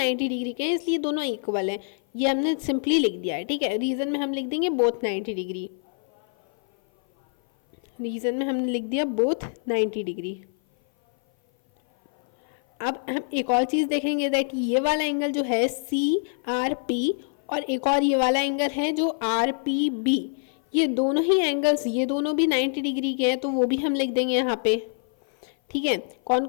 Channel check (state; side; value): silent; right; 57 dB below the other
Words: डिग्री के हैं इसलिए दोनों इक्वल हैं, ये हमने सिंपली लिख दिया है, ठीक है। रीजन में हम लिख देंगे बोथ 90 डिग्री, रीजन में हमने लिख दिया बोथ 90 डिग्री। अब हम एक और चीज़ देखेंगे दैट ये वाला एंगल जो है CRP और एक और ये वाला एंगल है जो RPB, ये दोनों ही एंगल्स, ये दोनों भी 90 डिग्री के हैं, तो वो भी हम लिख देंगे यहाँ पे, ठीक है। कौन